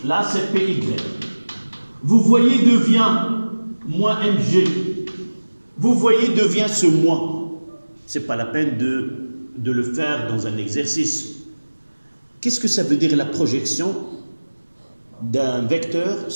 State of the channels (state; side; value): inverted; both; correlation -1.00